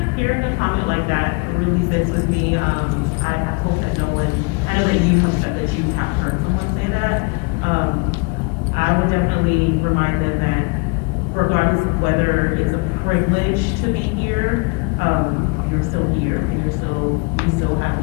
Hearing a comment like that really sits with me. I hope that no one, I know that you have said that you have heard someone say that. I would definitely remind them that regardless of whether it's a privilege to be here, you're still here. You still have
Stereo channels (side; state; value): right; quieter; 31.8 dB